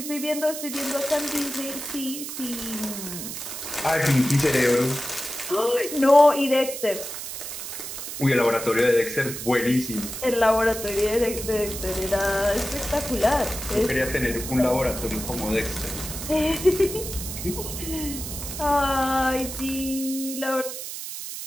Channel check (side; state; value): right; noise; hiss, 8 dB below the sound